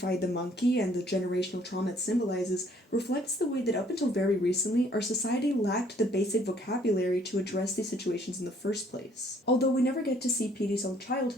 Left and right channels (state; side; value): normal; both; correlation 0.61